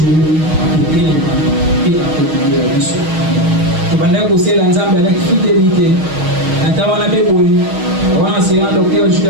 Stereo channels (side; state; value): left; late; 6.4 ms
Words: kutelema pia kutulia biso tubanda kusela nzambe avec fidélité natawana beboyi wana sera docteur